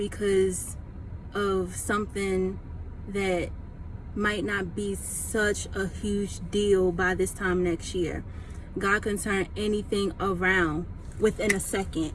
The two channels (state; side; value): identical; both; correlation 1.00